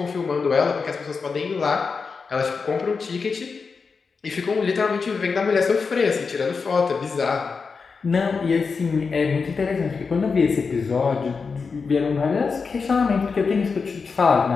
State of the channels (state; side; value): quieter; right; 5.0 dB